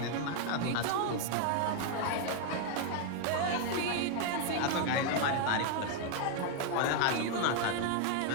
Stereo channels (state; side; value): different; both; correlation 0.01